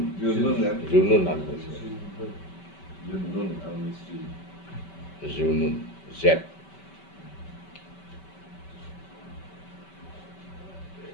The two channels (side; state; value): right; late; 5.2 ms